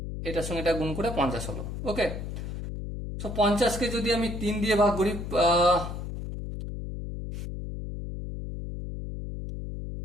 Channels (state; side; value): noise; left; hum, 6 dB below the sound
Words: এটার সঙ্গে এটা গুণ করে 50 হলো। ওকে, সো 50কে যদি আমি 3 দিয়ে ভাগ করি,